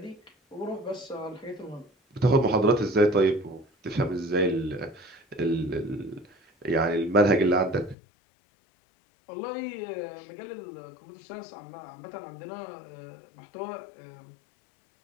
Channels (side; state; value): right; drops out; at 8.0 s